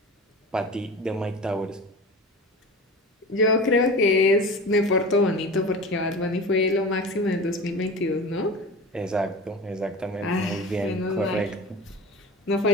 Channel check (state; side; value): normal; both; correlation 0.33